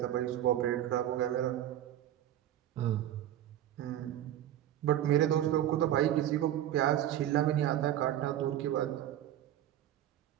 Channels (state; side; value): quieter; left; 12.0 dB